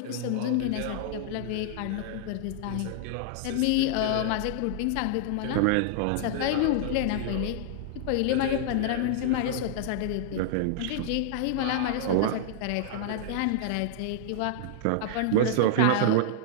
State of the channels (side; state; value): both; different; correlation -0.01